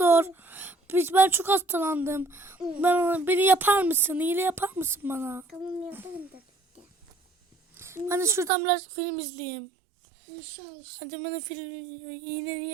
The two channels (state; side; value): drops out; left; at 8.5 s